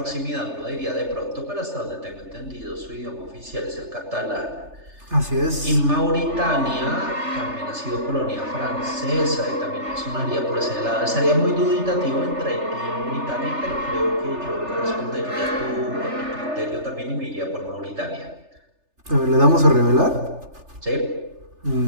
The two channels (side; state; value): left; late; 3.3 ms